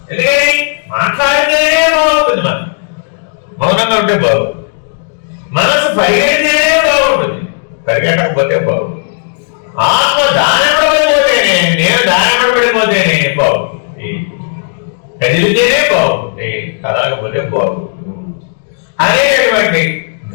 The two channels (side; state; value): right; silent; 70 dB below the other